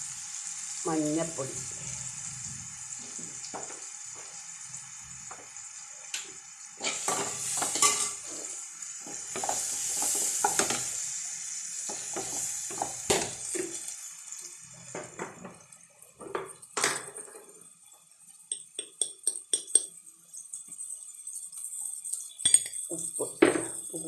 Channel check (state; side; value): identical; both; correlation 1.00